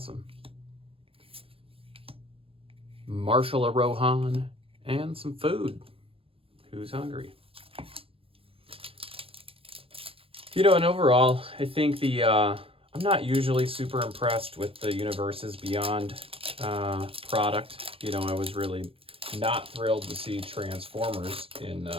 Marshal of Rohan and some food. Who's hungry? And overall, I think I'm not usually super impressed with the Universes Beyond product. I was really not thrilled to see Transformers in,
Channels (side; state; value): left; late; 0.27 ms